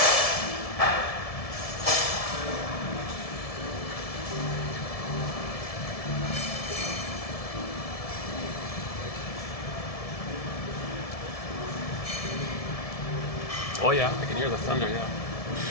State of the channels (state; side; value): late; right; 1.7 ms